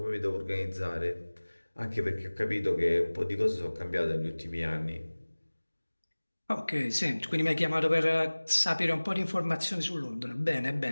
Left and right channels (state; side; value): inverted; both; correlation -1.00